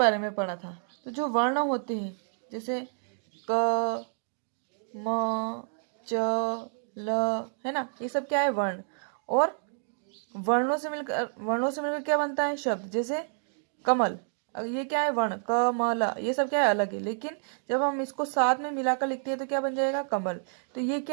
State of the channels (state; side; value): silent; left; digital silence